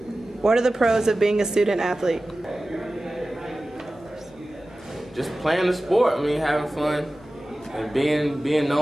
What are the pros of being a student athlete? Just playing the sport, having fun, and being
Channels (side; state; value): both; normal; correlation 0.96